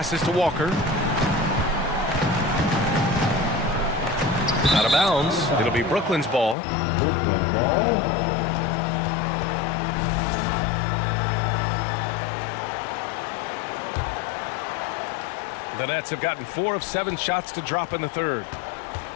to Walker. Out of bounds. It'll be Brooklyn's ball. The Nets have gotten 4 of 7 shots to drop in the third.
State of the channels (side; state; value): right; drops out; at 6.6 s